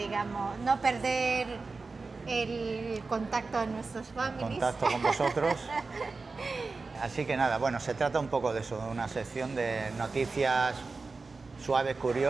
no perder el contacto de nuestros families. Contacto con vosotros. Así que nada, bueno, se trata un poco de eso, de una sección de noticias suaves,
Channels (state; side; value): quieter; left; 4.0 dB